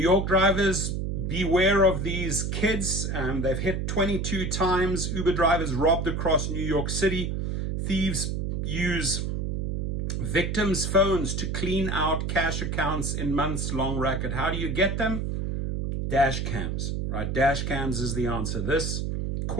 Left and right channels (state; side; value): noise; right; hum, 1 dB below the sound